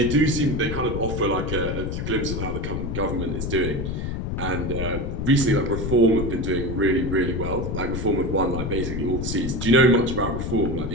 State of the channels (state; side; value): noise; left; rumble, 3 dB below the sound